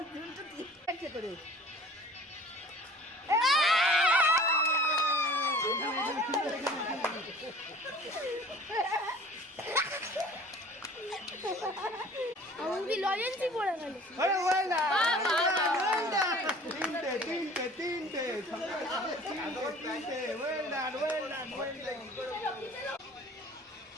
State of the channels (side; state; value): both; normal; correlation 0.47